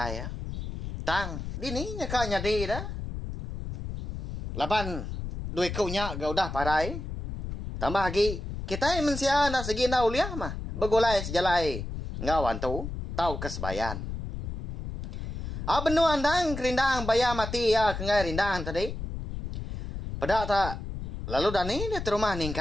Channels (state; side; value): noise; left; rumble, 6 dB below the sound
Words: ya tang dini nya ka nyadi dah laban duit kau nya ga udah parai tambah lagi kita mensia nak segi na uliah mah begulai sejalai ngawan tu tau kesebayan. Benu andang kerindang bayar mati ya kengai rindang tadi. Pedak tak. Lalu dani dia terumah